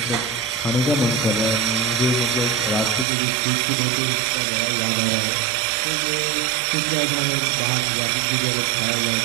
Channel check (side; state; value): left; drops out; at 3.1 s